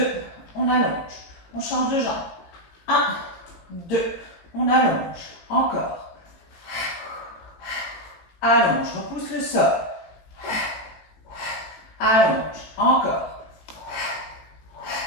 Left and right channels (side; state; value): right; late; 18 ms